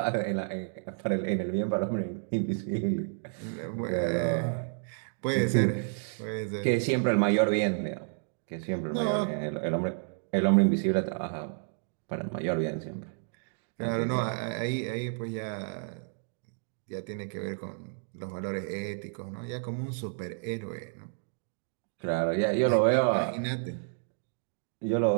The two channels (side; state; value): left; silent; digital silence